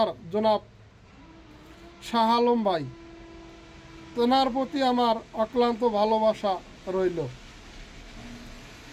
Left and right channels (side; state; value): both; identical; correlation 1.00